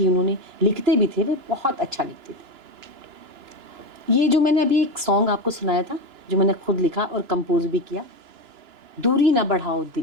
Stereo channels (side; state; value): left; late; 2.9 ms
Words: उन्होंने, लिखते भी थे, वे बहुत अच्छा लिखते थे। ये जो मैंने अभी एक सॉन्ग आपको सुनाया था, जो मैंने खुद लिखा और कंपोज भी किया, दूरी ना बढ़ाओ